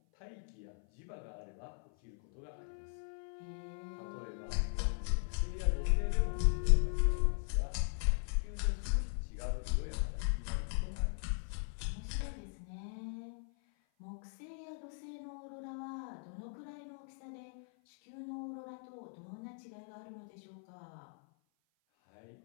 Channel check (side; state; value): right; silent; 52 dB below the other